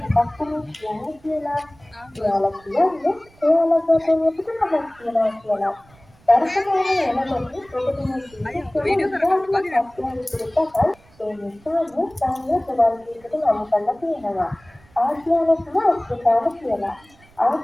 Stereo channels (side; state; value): right; noise; rumble, 28 dB below the sound